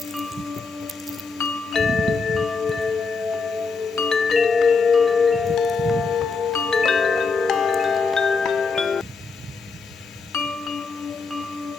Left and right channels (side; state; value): right; quieter; 4.6 dB